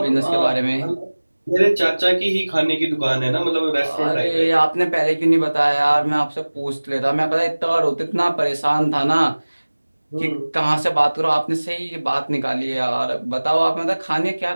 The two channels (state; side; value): inverted; both; correlation -1.00